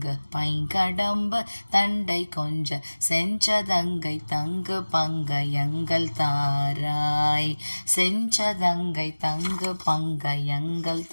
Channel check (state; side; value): inverted; both; correlation -1.00